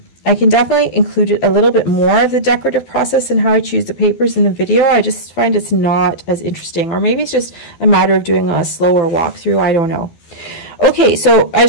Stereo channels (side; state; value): right; late; 12 ms